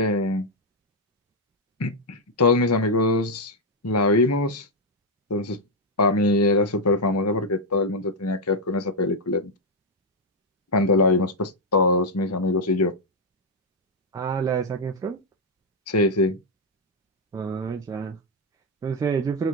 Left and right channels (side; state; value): both; normal; correlation -0.01